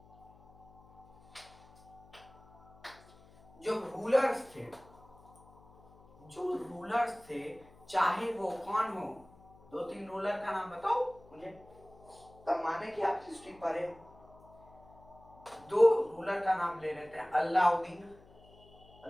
जो रूलर्स थे, जो रूलर्स थे, चाहे वो कौन हो, दो तीन रूलर का नाम बताओ मुझे, तब माने कि आप हिस्ट्री पढ़े हो। दो रूलर का नाम ले लेते हैं, अलाउद्दीन,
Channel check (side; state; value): left; noise; hum, 25 dB below the sound